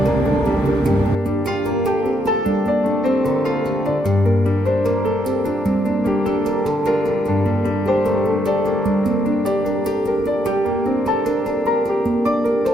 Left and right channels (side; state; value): both; normal; correlation 0.75